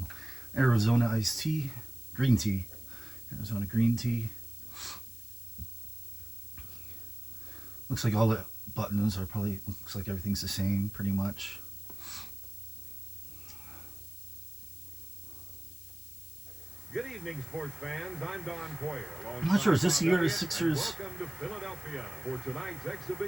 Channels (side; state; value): left; noise; hiss, 16 dB below the sound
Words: Arizona iced tea. Green tea. Arizona green tea. Looks like all the buttons are probably, looks like everything's the same pretty much. Good evening, sports fans. I'm Don Poyer. I'm not sure, is this the year the Sixers? Welcome to Philadelphia for tonight's